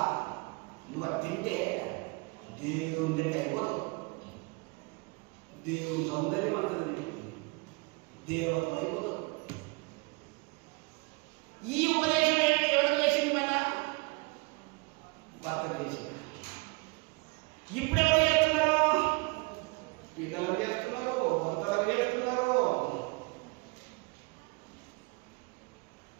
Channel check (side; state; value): left; quieter; 28.4 dB